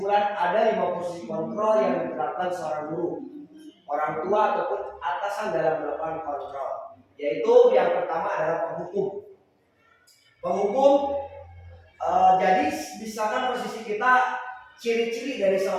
ada 5 posisi kontrol yang diterapkan seorang guru, orang tua ataupun atasan dalam melakukan kontrol. Yaitu yang pertama adalah penghukum. Jadi misalkan posisi kita, ciri-ciri dari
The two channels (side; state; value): both; identical; correlation 1.00